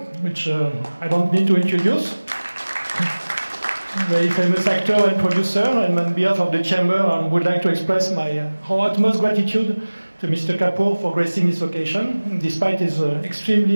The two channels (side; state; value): both; inverted; correlation -1.00